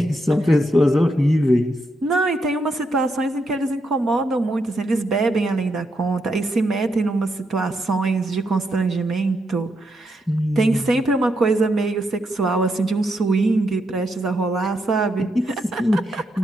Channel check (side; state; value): both; normal; correlation 0.80